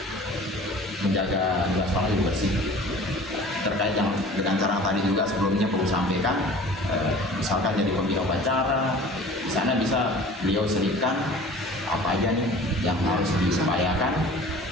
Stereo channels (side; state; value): both; normal; correlation 0.44